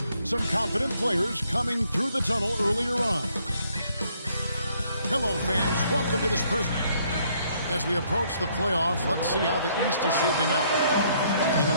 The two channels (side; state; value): both; inverted; correlation -0.67